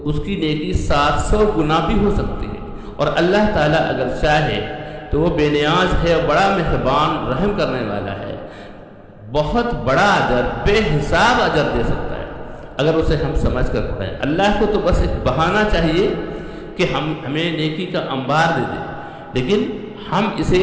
اس کی نیکی 700 گنا بھی ہو سکتی ہے، اور اللہ تعالیٰ اگر چاہے تو وہ بے نیاز ہے اور بڑا مہربان رحم کرنے والا ہے، بہت بڑا اجر، بے حساب اجر دے سکتا ہے اگر اسے ہم سمجھ کر پڑھیں۔ اللہ کو تو بس ایک بہانہ چاہیے کہ ہمیں نیکی کا انبار دے دے، لیکن ہم اسے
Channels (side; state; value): both; identical; correlation 1.00